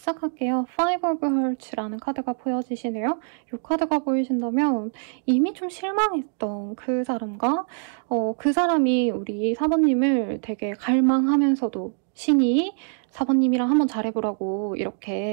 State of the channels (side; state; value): left; silent; 62 dB below the other